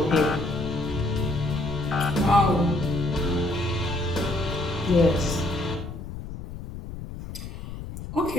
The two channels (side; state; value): left; noise; rumble, 10 dB below the sound